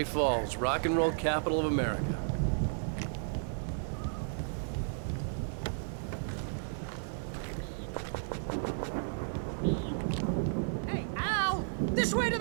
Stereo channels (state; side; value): silent; left; 56 dB below the other